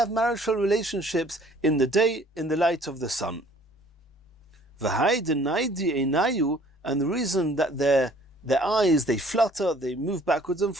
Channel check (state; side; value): normal; both; correlation 0.55